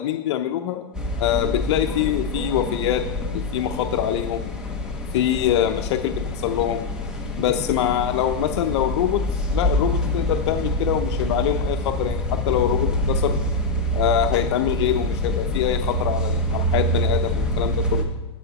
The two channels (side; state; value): right; quieter; 4.8 dB